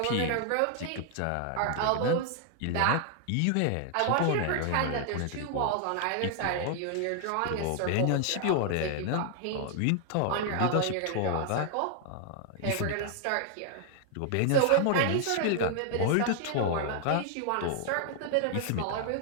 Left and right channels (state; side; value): different; both; correlation 0.00